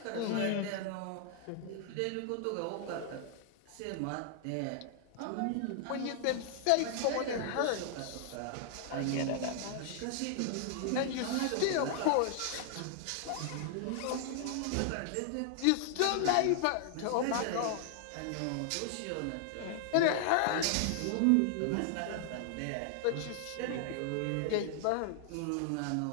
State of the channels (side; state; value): both; different; correlation 0.00